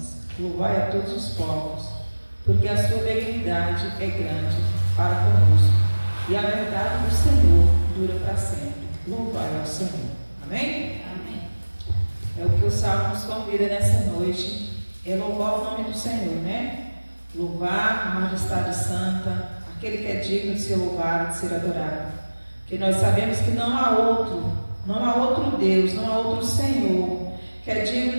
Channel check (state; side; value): inverted; both; correlation -1.00